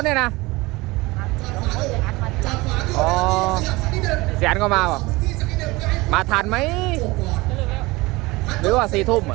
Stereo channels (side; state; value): left; quieter; 22.1 dB